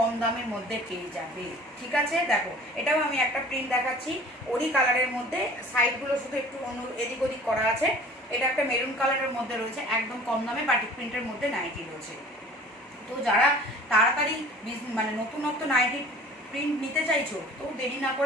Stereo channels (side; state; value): both; normal; correlation 0.46